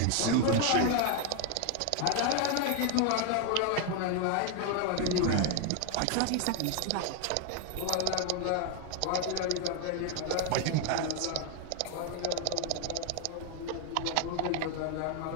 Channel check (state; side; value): different; both; correlation 0.01